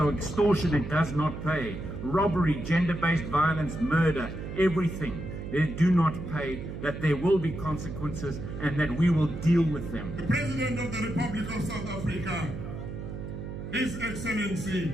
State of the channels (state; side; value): noise; right; hum, 8 dB below the sound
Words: extortion, it does not pay. Robbery, gender-based violence, murder, everything. They do not pay, that there will be consequences and that we will deal with them. The President of the Republic of South Africa, His Excellency,